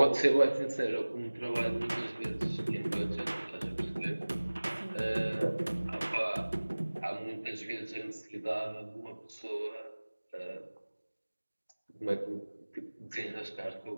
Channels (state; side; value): inverted; both; correlation -1.00